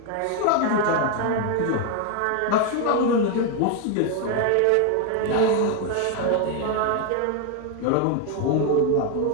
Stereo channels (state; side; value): different; both; correlation 0.01